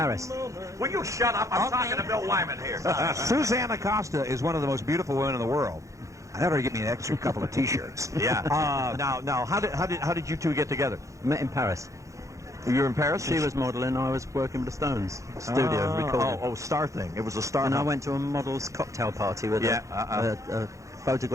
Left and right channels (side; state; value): left; late; 0.15 ms